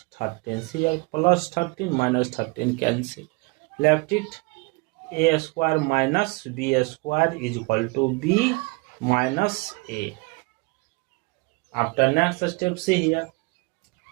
13. See here, plus 13 minus 13 cancel. Left it, a square minus b square is equal to b minus a. After next step, see here,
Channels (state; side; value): quieter; left; 26.7 dB